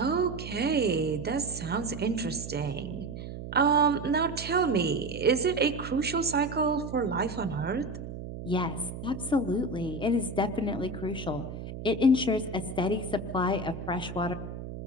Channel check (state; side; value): noise; right; hum, 9 dB below the sound